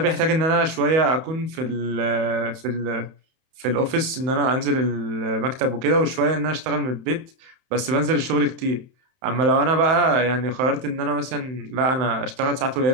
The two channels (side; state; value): left; late; 31 ms